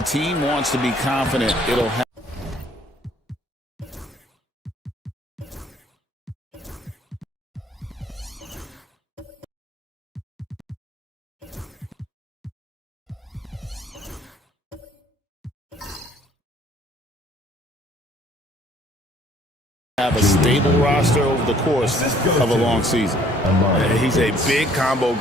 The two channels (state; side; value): normal; both; correlation 0.60